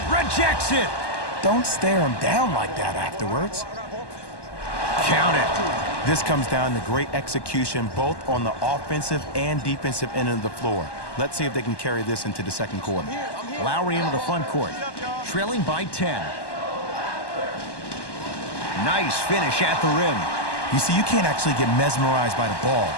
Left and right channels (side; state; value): right; late; 1.1 ms